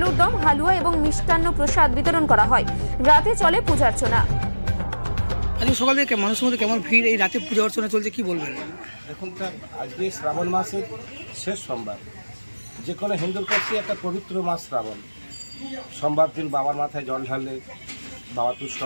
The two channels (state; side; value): inverted; both; correlation -1.00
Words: দম, হালুয়া এবং মিষ্টান্ন প্রসাদ বিতরণ করা হয়। রাতে চলে পূজার্চনা। আজকে সকাল থেকে মানুষের মধ্যে কেমন ভিড়, এই রাতে পূজা অর্চনা চলছে, কি বলবেন? দেখুন স্যার, আজকে শ্রাবণ মাসের শেষ সোমবার। যে কোনো হিন্দুর কাছে একটা পবিত্র মাস শ্রাবণ। সোমবার দিন বাবার মাথায় জল ঢাললে বাবা তুষ্ট